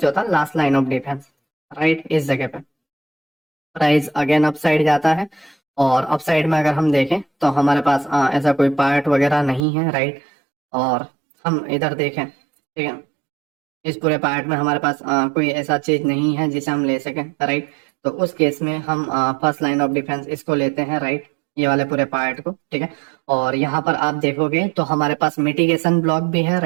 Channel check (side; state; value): left; drops out; at 9.7 s